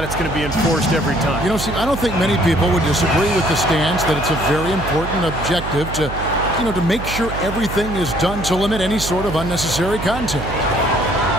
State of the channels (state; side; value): noise; right; hum, 8 dB below the sound